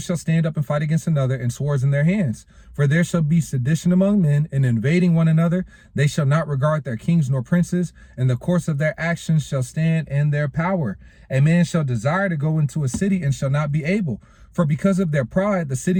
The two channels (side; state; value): both; identical; correlation 1.00